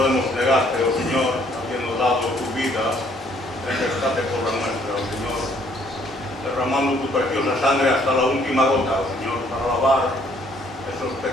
negarte, oh Señor, habiendo dado tu vida en rescate por la nuestra, oh Señor? Derramando tu preciosa sangre hasta la última gota, oh Señor, para lavar esos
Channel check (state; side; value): normal; both; correlation 0.64